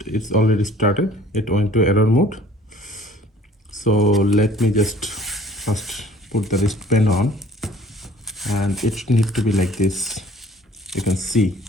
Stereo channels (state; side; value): normal; both; correlation 0.53